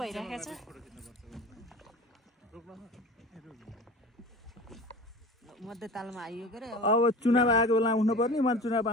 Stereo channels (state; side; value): normal; both; correlation 0.37